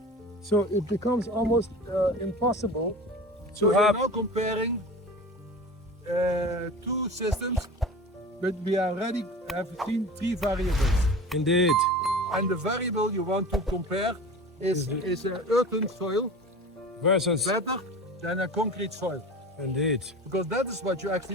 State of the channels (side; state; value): both; normal; correlation 0.35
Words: So it becomes almost impossible So to you're have. now comparing two systems, but we already have seen three variables. Indeed. And the variable you want to compare is an earthen soil Versus. better than a concrete soil? Indeed. Because that is what you